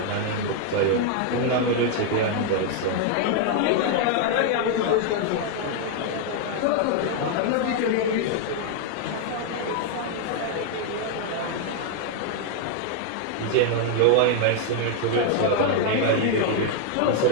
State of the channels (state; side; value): different; both; correlation 0.00